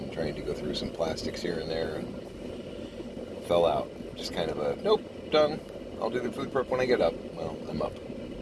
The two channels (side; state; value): both; identical; correlation 1.00